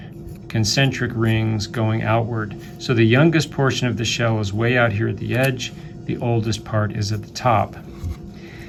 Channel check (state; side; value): identical; both; correlation 1.00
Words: concentric rings going outward. So the youngest portion of the shell is way out here at the edge, the oldest part is at the top.